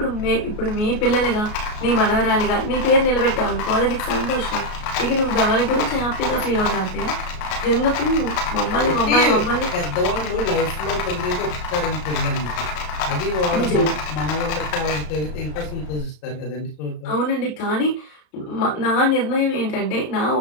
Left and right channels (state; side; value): late; right; 33 ms